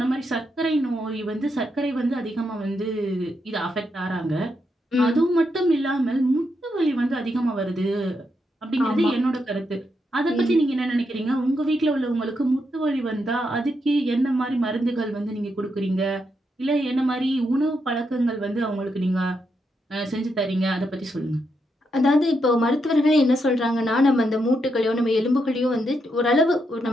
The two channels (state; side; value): normal; both; correlation 0.82